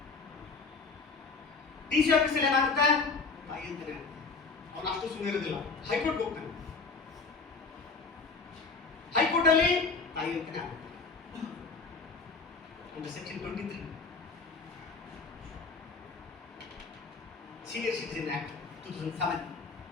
ಡಿಸಿ ಆಫೀಸಲ್ಲಿ ಏನಾಗುತ್ತೆ? ತಾಯಿ ಅಂತಾನೆ ಆಗುತ್ತೆ. ಅವನು ಅಷ್ಟು ಸುಮ್ಮನೆ ಇರೋದಿಲ್ಲ, ಹೈಕೋರ್ಟ್ ಹೋಗ್ತಾನೆ. ಹೈಕೋರ್ಟ್ ಅಲ್ಲಿ ತಾಯಿ ಅಂತಾನೆ ಆಗುತ್ತೆ. ಒಂದು ಸೆಕ್ಷನ್ 23 ಸೀನಿಯರ್ ಸಿಟಿಜನ್ ಆಕ್ಟ್ 2007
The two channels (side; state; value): right; quieter; 4.3 dB